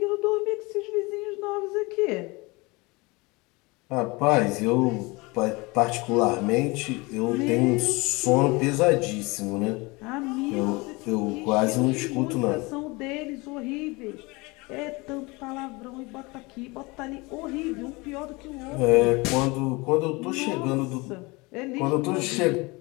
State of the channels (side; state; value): right; quieter; 25.1 dB